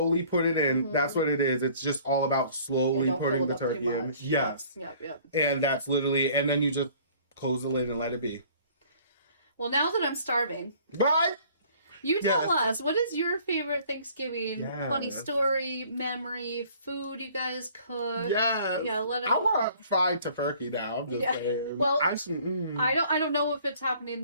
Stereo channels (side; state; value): both; inverted; correlation -0.54